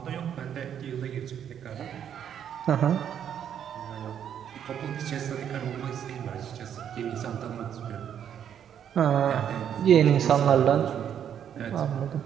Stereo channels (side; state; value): left; quieter; 9.1 dB